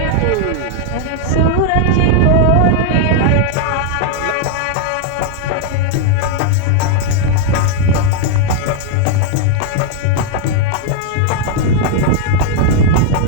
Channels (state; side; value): different; both; correlation 0.00